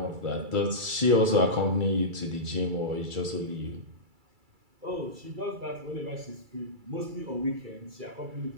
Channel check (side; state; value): left; late; 2.3 ms